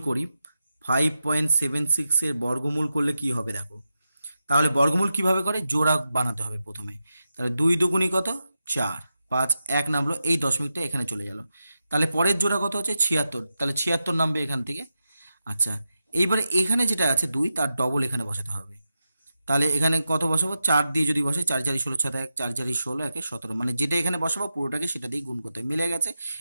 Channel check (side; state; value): both; inverted; correlation -0.89